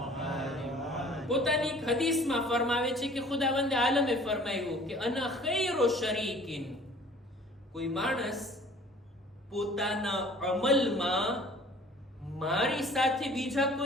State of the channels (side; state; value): both; normal; correlation 0.50